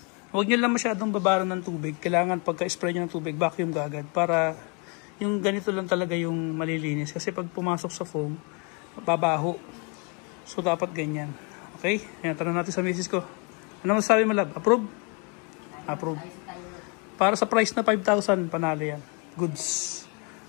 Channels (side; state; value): right; quieter; 34.6 dB